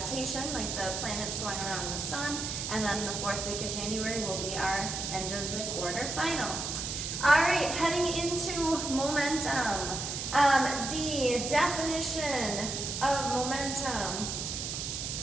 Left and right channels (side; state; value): right; noise; hiss, 4 dB below the sound